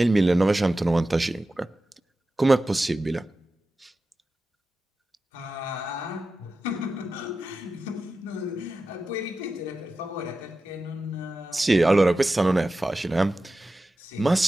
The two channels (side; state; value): both; normal; correlation 0.93